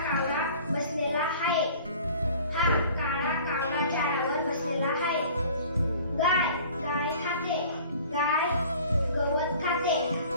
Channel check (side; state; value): both; inverted; correlation -0.47